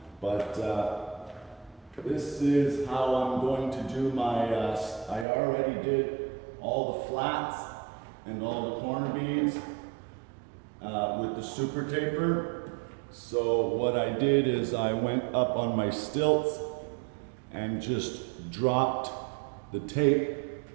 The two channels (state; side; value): drops out; left; at 5.2 s